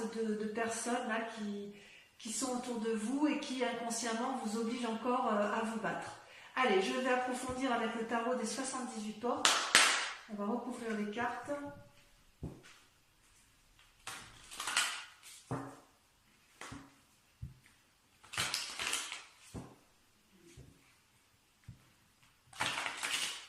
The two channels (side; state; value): both; identical; correlation 1.00